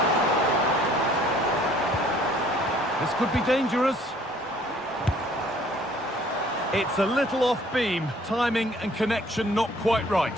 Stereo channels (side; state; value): both; normal; correlation 0.57